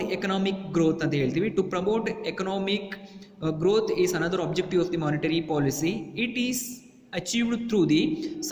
economic growth ಅಂತ ಹೇಳ್ತೀವಿ. To promote economic growth is another objective of the monetary policy. It is achieved through the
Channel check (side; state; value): both; identical; correlation 1.00